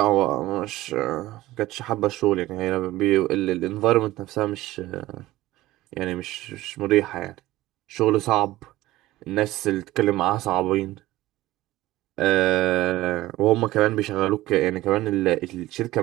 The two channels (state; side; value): quieter; left; 16.8 dB